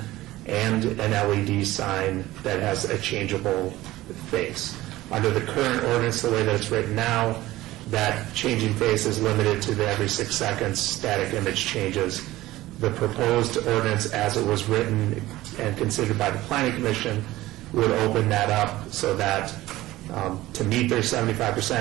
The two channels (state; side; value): quieter; left; 16.9 dB